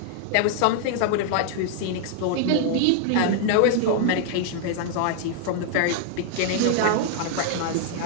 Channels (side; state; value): both; different; correlation -0.01